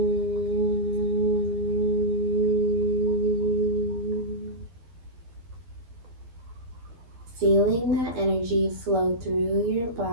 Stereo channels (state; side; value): late; left; 12 ms